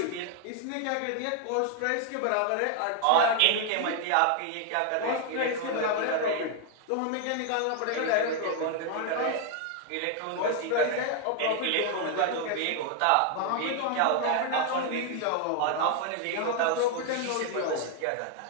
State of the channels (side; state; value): both; different; correlation 0.00